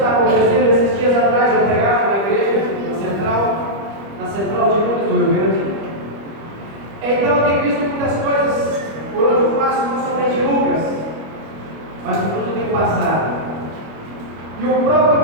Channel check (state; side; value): late; left; 25 ms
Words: acontecendo. Esses dias atrás eu pregava na igreja, na central de Lucas do Rio Grande. Então eu tenho visto muitas coisas por onde eu passo, não somente Lucas, mas por onde eu tenho passado. E o próprio